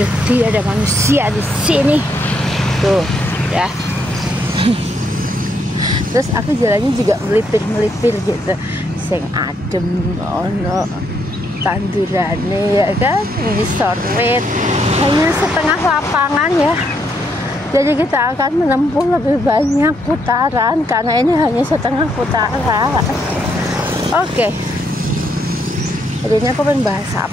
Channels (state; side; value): normal; both; correlation 0.75